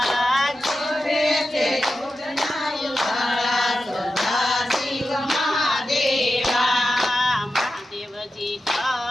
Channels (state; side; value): normal; both; correlation 0.91